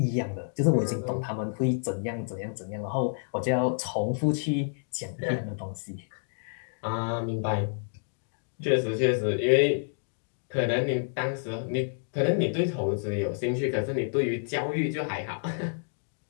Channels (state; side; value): silent; right; digital silence